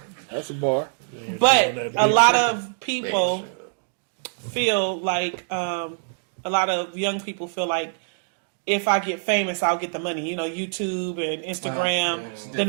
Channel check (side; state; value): left; silent; digital silence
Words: That's a bar. doing But that a big lot shit. of people feel like a lot of young people feel like if I get famous, I'll get the money. You know, YouTube and Instagram, yeah, it's a then